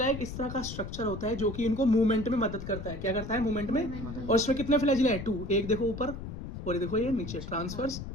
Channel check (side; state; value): left; noise; rumble, 9 dB below the sound